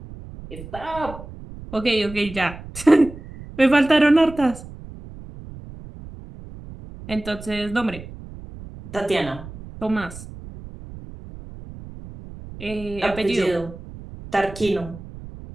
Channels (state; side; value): noise; right; rumble, 15 dB below the sound